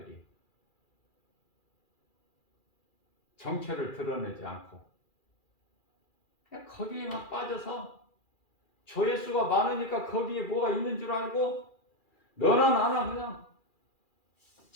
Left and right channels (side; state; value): right; late; 2.4 ms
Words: 정체를 드러내지 않고. 그냥 거기에만 빠져서 조회수가 많으니까 거기에 뭐가 있는 줄 알고 너나 나나 그냥